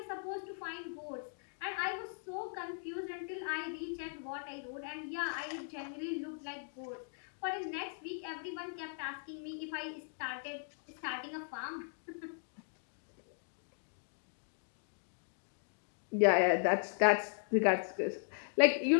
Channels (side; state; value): right; silent; digital silence